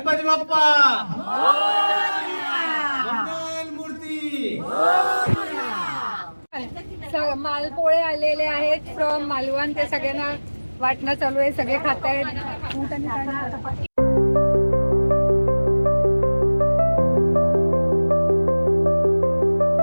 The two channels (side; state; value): both; inverted; correlation -1.00